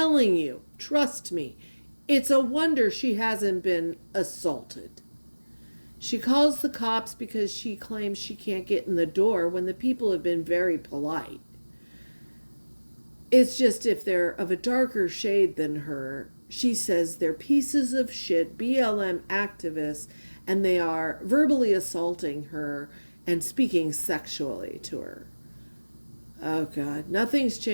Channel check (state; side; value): inverted; both; correlation -1.00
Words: you, trust me, it's a wonder she hasn't been assaulted. She calls the cops because she claims she can't get in the door when the people have been very polite. It's just if they're of a darker shade than her, she says they're pieces of shit, BLM activists, and they are verbally assaulting her and speaking sexually to her. Oh God, nothing's